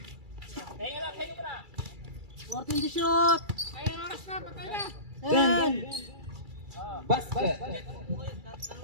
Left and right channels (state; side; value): late; left; 2.3 ms